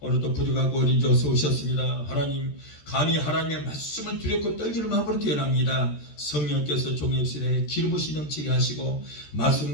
부족하고 어린 자 어서 오셨습니다. 하나님, 감히 하나님의 말씀을 두렵고 떨기는 마음으로 태어납니다. 성령께서 종역실에 기름 부으시 넘치게 하시고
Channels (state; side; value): late; right; 13 ms